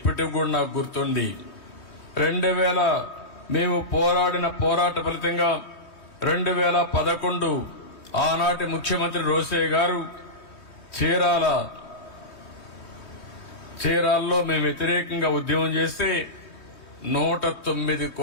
కూడా నాకు గుర్తుంది. 2000 మేము పోరాడిన పోరాట ఫలితంగా 2011 ఆనాటి ముఖ్యమంత్రి రోసయ్య గారు చీరాల్లో మేము వ్యతిరేకంగా ఉద్యమం చేస్తే 109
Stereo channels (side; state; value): right; late; 3.2 ms